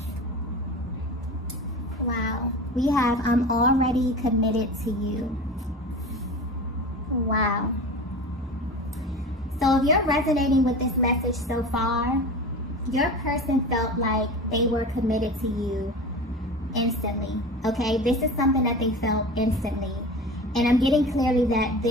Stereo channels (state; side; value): normal; both; correlation 0.32